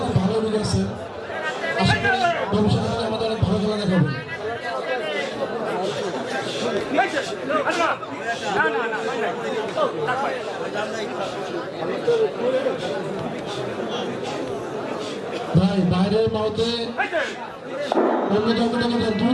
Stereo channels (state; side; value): identical; both; correlation 1.00